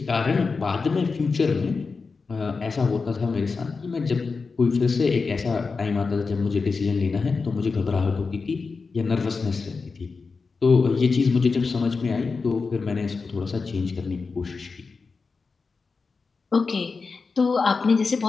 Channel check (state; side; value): quieter; right; 4.6 dB